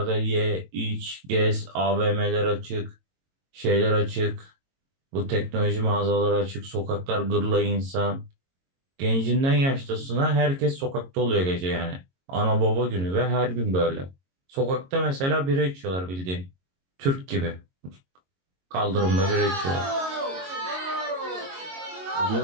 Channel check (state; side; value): late; left; 22 ms